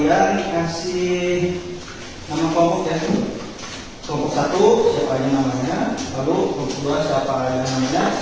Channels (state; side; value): identical; both; correlation 1.00